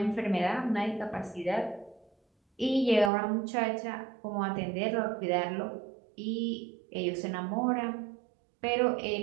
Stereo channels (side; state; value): left; drops out; at 3.1 s